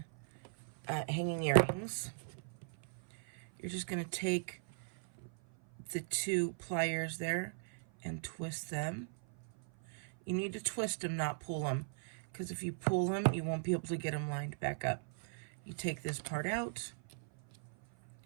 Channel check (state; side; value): silent; left; 52 dB below the other